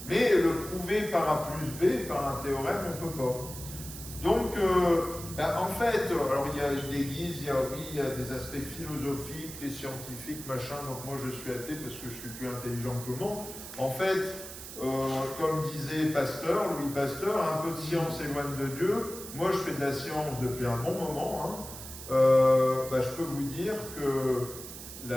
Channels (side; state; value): right; noise; hiss, 11 dB below the sound